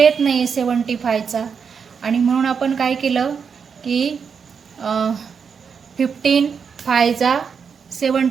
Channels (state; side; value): quieter; left; 6.3 dB